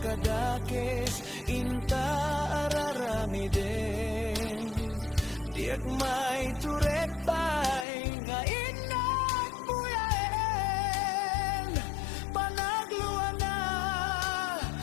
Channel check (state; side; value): drops out; right; at 7.9 s